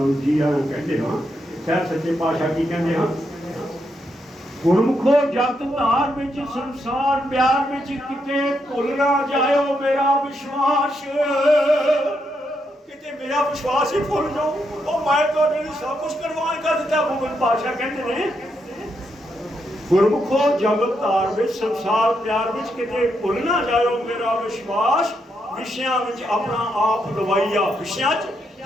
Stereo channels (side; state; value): both; normal; correlation 0.80